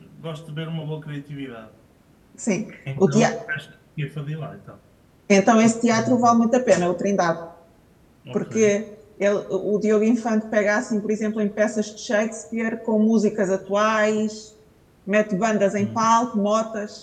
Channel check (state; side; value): identical; both; correlation 1.00